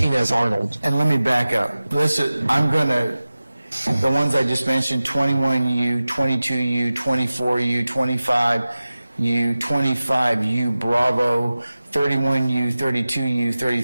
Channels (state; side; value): inverted; both; correlation -0.96